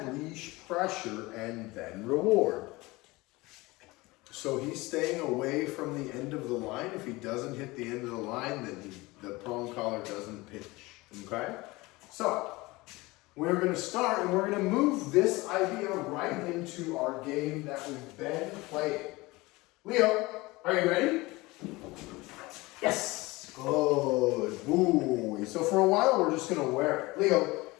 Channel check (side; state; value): right; quieter; 21.8 dB